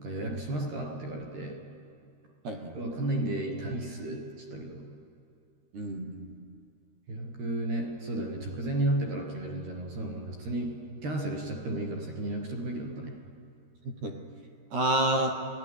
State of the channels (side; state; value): left; late; 13 ms